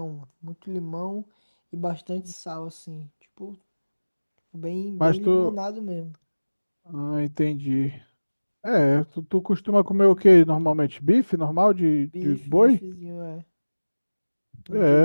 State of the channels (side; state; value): both; inverted; correlation -1.00